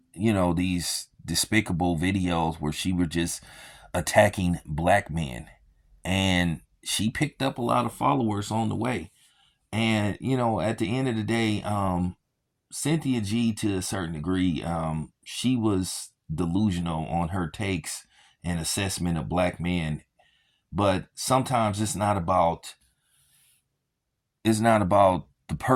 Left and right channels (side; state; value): both; identical; correlation 1.00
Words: these despicable videos where she were just attacking black men, and she picked up a lot of followers on the way. And at the end of the day, Cynthia G, to a certain degree, she was delusional on her takes and assessment of black men. But sometimes it's not about the